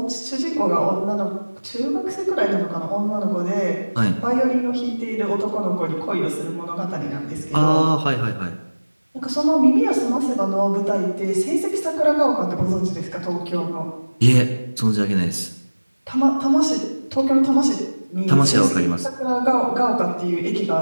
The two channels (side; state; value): both; inverted; correlation -1.00